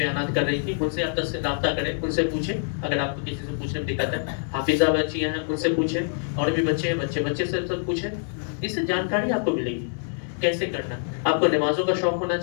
کر رہی تھی، ان سے آپ رابطہ کریں، ان سے پوچھیں اگر آپ کو کسی سے پوچھنے میں دقت ہے. حافظہ بچیاں ہیں، ان سے پوچھیں، اور بھی بچے ہیں، بچے سے سب پوچھیں. اس سے جانکاری آپ کو ملے گی کیسے کرنا. آپ کو نمازوں کا شوق ہونا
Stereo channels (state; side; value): silent; right; 60 dB below the other